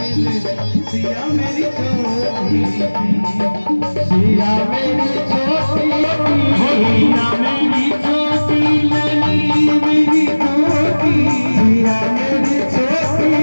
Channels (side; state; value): both; inverted; correlation -1.00